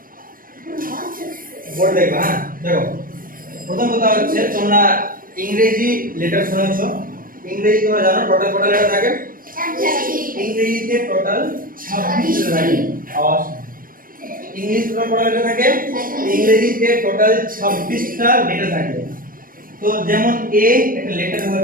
বোর্ড দেখবা, হ্যাঁ দেখো প্রথম কথা হচ্ছে তোমরা ইংরেজি লেটার শুনেছো। ইংরেজি তোমরা জানো টোটাল কটা লেটার থাকে? ইংরেজিতে টোটাল 26 লেটার থাকে। আওয়াজ ইংলিশ টোটাল কটা লেটার থাকে? ইংরেজিতে টোটাল 26টা লেটার থাকে। তো যেমন এ একটা লেটার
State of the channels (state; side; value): late; left; 0.41 ms